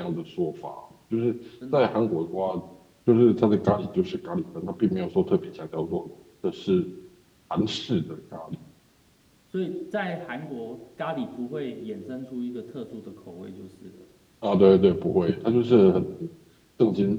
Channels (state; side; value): identical; both; correlation 1.00